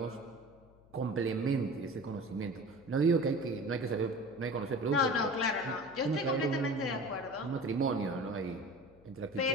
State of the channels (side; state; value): left; noise; hum, 26 dB below the sound